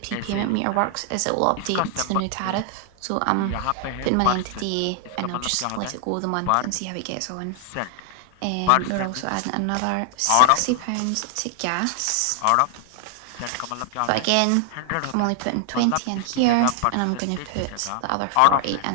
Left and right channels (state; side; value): different; both; correlation 0.00